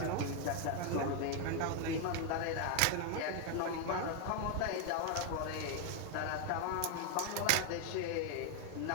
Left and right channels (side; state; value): both; different; correlation 0.01